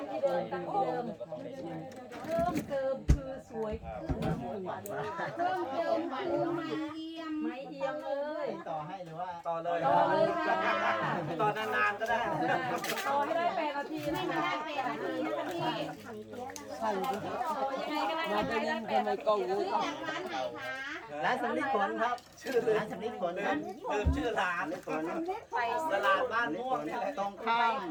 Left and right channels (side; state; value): both; identical; correlation 1.00